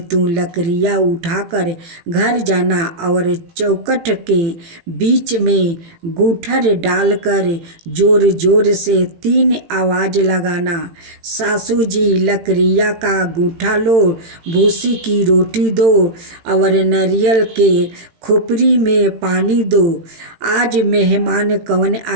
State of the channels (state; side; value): late; left; 18 ms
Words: तू लकड़ियाँ उठाकर घर जाना और चौखट के बीच में गूठर डालकर जोर जोर से 3 आवाज़ लगाना, सासू जी लकड़ियाँ का गूठा लो, भूसी की रोटी दो और नारियल के खोपड़ी में पानी दो। आज मेहमान कौन